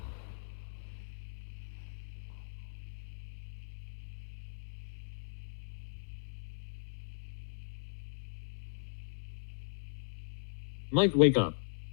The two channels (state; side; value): silent; right; 52 dB below the other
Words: Mike, wake up.